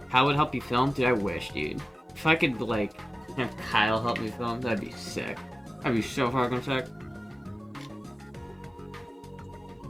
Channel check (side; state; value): both; normal; correlation 0.96